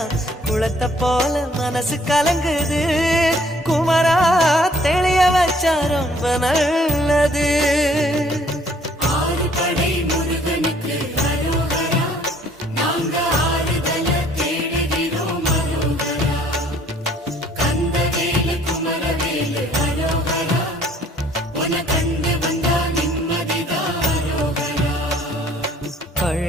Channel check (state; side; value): normal; both; correlation 0.59